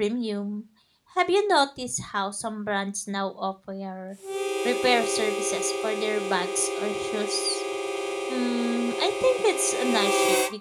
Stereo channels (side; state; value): both; identical; correlation 1.00